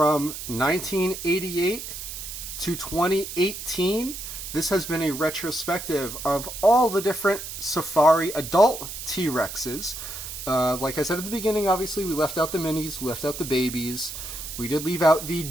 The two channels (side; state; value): right; noise; hiss, 9 dB below the sound